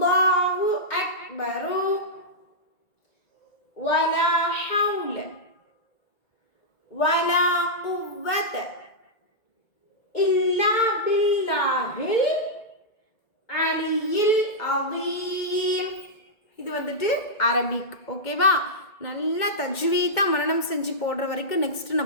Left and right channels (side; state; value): right; late; 1.8 ms